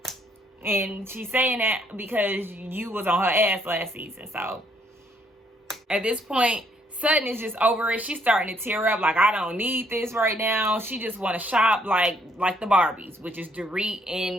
And she's saying that because you was on her ass last season. So, at this point, Sutton is just over it. She's starting to tear up. Like, I don't need this right now. She just want to shop like the Barbies, which is Dorit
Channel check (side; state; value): both; normal; correlation 0.68